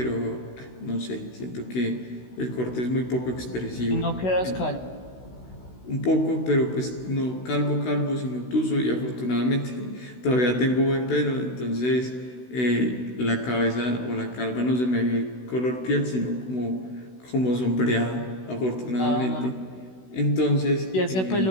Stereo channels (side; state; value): right; late; 16 ms